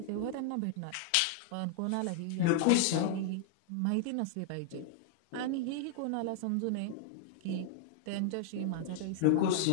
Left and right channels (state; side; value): different; both; correlation 0.00